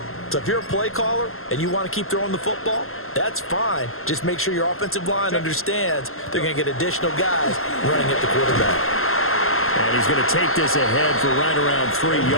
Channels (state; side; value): late; right; 0.62 ms